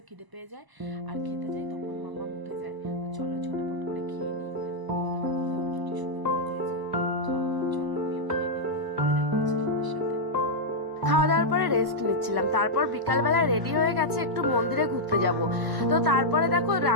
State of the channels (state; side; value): late; left; 1.0 ms